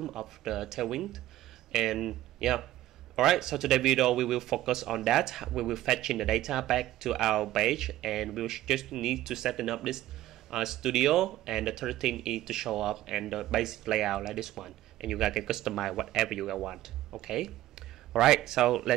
of the Tailwind. And yeah, alright. So today video we will focus on that. We will fetch in the data back to our page, and we will just need to set up this studio. And the third thing is to show up and the basic layout like this one. And you guys can customize whatever you guys want. Okay. Alright, so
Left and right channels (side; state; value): left; quieter; 14.7 dB